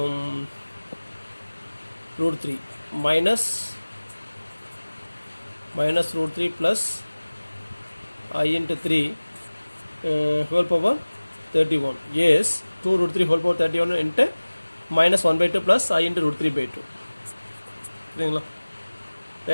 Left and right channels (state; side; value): inverted; both; correlation -1.00